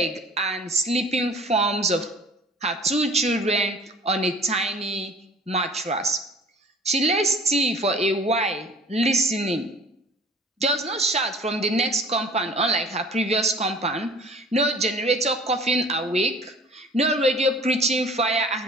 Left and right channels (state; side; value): normal; both; correlation 0.48